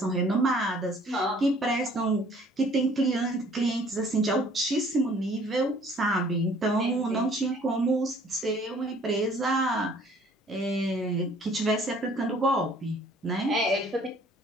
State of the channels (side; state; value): both; normal; correlation 0.56